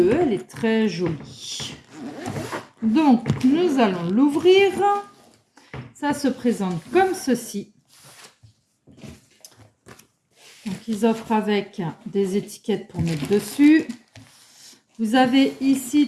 elle est très jolie. Donc, nous allons l'ouvrir. Ça se présente comme ceci. Donc, ils offrent avec des étiquettes pour mettre dessus. Vous avez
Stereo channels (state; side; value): identical; both; correlation 1.00